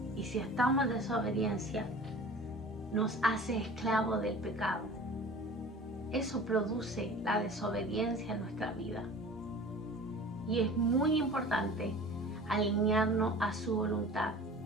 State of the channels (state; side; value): normal; both; correlation 0.41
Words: Y si estamos en desobediencia, nos hace esclavos del pecado. Eso produce la desobediencia en nuestra vida. Y es muy importante alinearnos a su voluntad.